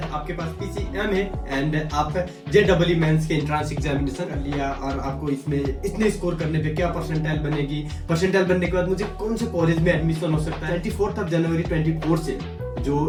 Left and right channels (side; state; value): both; identical; correlation 1.00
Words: पास पीसीएम है एंड आप जेईई मेंस के एंट्रेंस एग्जामिनेशन कर लिया और आपको इसमें इतने स्कोर करने पे क्या परसेंटाइल बनेगी। परसेंटाइल बनने के बाद मुझे कौन से कॉलेज में एडमिशन हो सकता है। 24 जनवरी 24 से